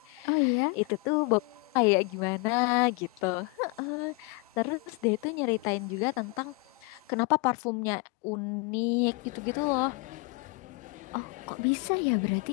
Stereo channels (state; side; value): quieter; right; 27.9 dB